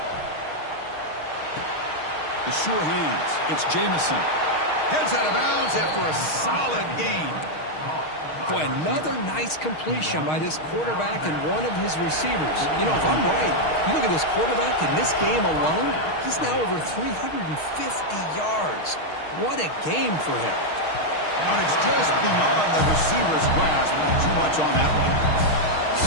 The sure hands. It's Jamison. Heads out of bounds after a solid gain. Boy, another nice completion by this quarterback and one of his receivers. You know, if I'm right, you look at this quarterback in this game alone, he's now over 350 yards. What a game for him. And it's just beyond the receiver's grasp. Too much on that one.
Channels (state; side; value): late; right; 6.4 ms